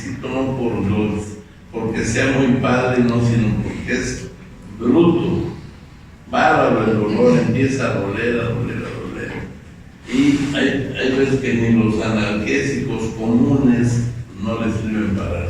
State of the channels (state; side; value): identical; both; correlation 1.00